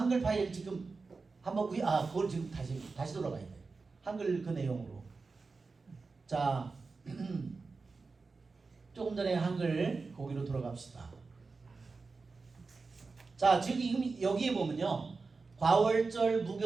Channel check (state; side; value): quieter; left; 4.2 dB